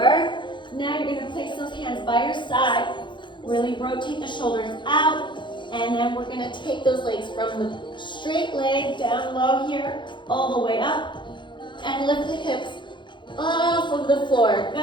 Now you're going to place those hands by your side. Really rotate the shoulders out. And then we're going to take those legs from the straight leg down low here, all the way up. And lift the hips off of the floor.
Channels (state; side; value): late; right; 0.23 ms